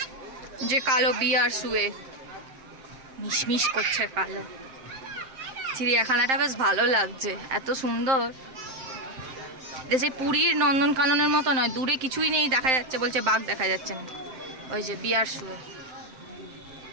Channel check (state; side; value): late; left; 7.6 ms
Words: যে কালো বিয়ার শুয়ে মিশমিশ করছে কালো। চিড়িয়াখানাটা বেশ ভালো লাগছে, এত সুন্দর। সেই পুরীর নন্দনকাননের মতো নয়, দূরে কিছুই নেই দেখা যাচ্ছে, বলছে বাঘ দেখা যাচ্ছে না। ওই যে বিয়ার শুয়ে।